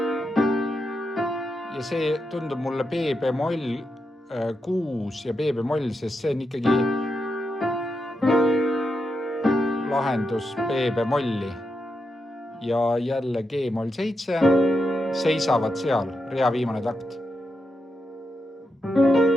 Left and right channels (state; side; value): normal; both; correlation 0.85